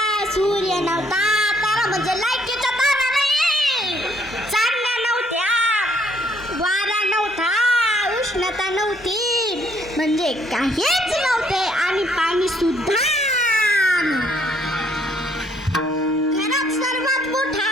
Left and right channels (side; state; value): both; normal; correlation 0.66